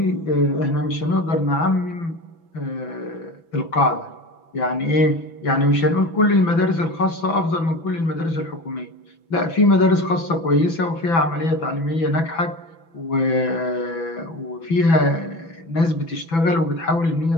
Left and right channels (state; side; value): late; right; 6.0 ms